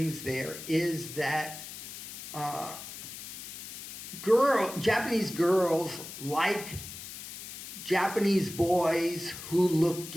there is that Japanese girls like Japanese boys who look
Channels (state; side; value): noise; left; hiss, 11 dB below the sound